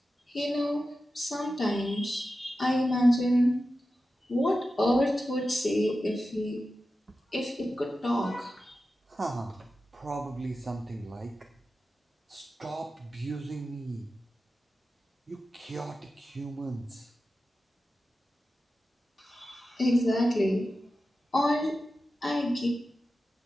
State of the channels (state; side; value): normal; both; correlation 0.93